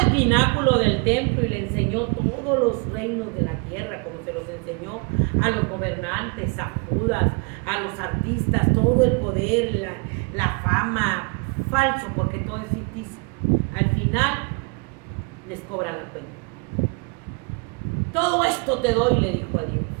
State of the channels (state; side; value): quieter; left; 32.9 dB